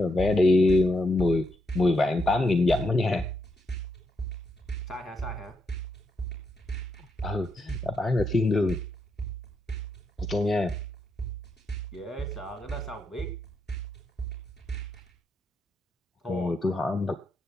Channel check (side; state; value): both; normal; correlation 0.80